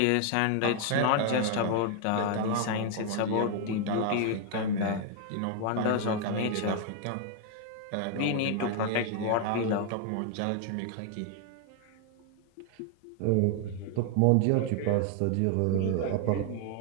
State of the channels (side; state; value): both; different; correlation 0.00